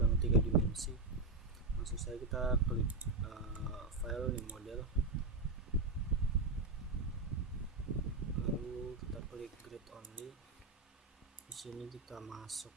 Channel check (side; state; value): left; quieter; 3.4 dB